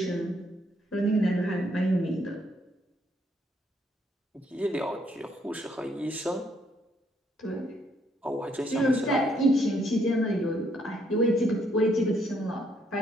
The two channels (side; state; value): both; normal; correlation 0.71